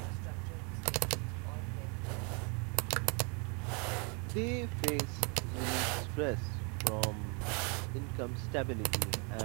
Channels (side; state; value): left; quieter; 34.3 dB